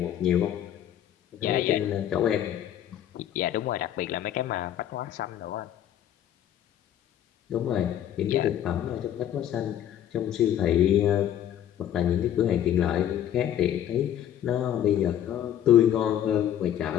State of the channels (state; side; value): quieter; right; 10.8 dB